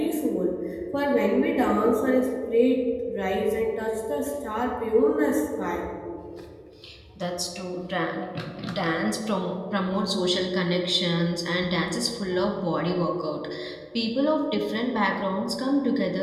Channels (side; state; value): both; identical; correlation 1.00